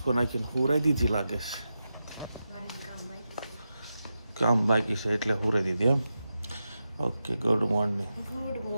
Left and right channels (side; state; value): both; inverted; correlation -0.90